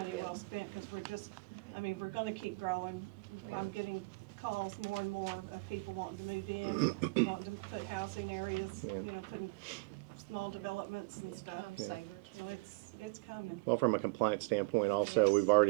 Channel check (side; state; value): left; quieter; 28.5 dB